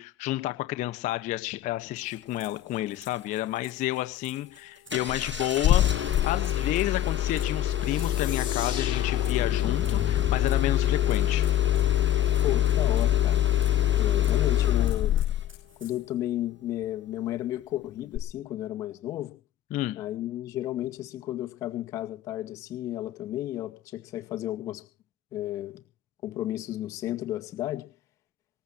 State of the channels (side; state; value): right; quieter; 12.2 dB